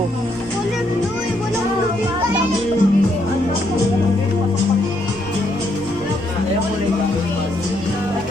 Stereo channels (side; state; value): both; normal; correlation 0.74